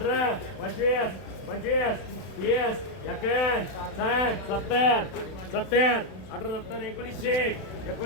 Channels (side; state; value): right; late; 32 ms